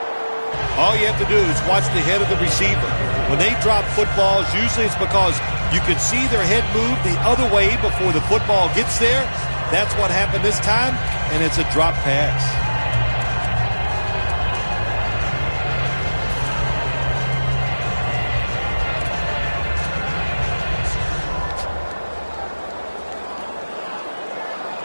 All you have to do is watch the head of the receiver. When they drop footballs, usually it's because you can see their head move the other way before the football gets there. That's what happened this time, and it's a drop pass.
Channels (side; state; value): both; inverted; correlation -1.00